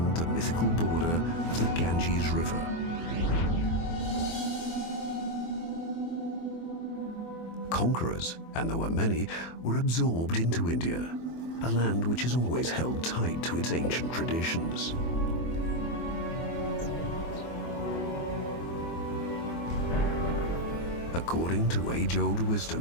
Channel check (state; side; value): late; right; 24 ms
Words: the mythical border of the Ganges River. Conquerors, and there were many, were absorbed into India, a land which has always held tight to its ancient traditions. According to age-old